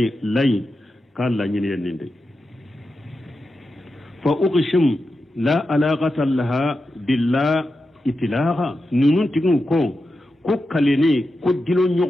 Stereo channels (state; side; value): normal; both; correlation 0.90